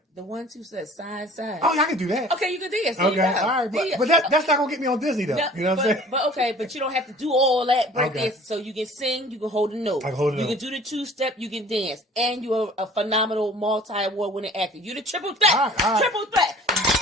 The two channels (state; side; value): normal; both; correlation 0.48